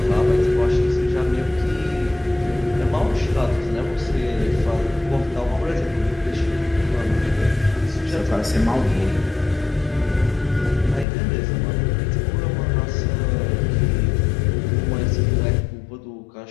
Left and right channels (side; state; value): right; drops out; at 11.1 s